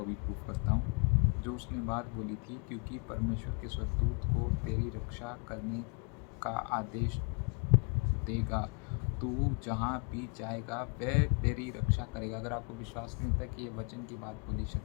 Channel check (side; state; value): right; quieter; 35.4 dB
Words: अभी प्रूफ करता हूँ। जो उसने बात बोली थी, क्योंकि परमेश्वर के स्वर्गदूत को तेरी रक्षा करने का आदेश देगा, तू जहाँ भी जाएगा वह तेरी रक्षा करेगा। अगर आपको विश्वास नहीं होता कि ये वचन की बात बोली